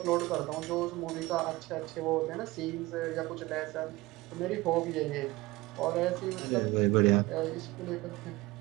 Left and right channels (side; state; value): left; quieter; 20.3 dB